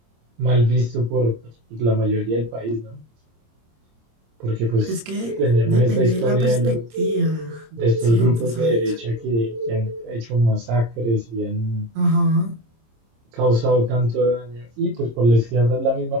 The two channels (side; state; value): left; late; 26 ms